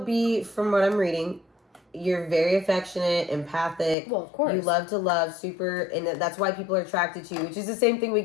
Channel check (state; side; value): drops out; right; at 4.0 s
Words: from what I'm reading, you're very affectionate, empathic. Well, of course. You love to love, super, and that's why people are attracted to you, which is the same thing we